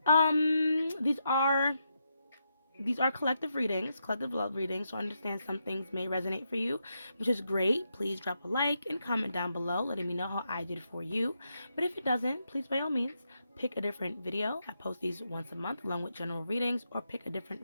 These are collective readings, collective love readings, so I understand some things may resonate for you, which is great. Please drop a like and comment down below letting me know how I did for you. But if it doesn't, please by all means pick a different video. I post these once a month along with general readings, or pick a different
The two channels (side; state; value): both; inverted; correlation -0.82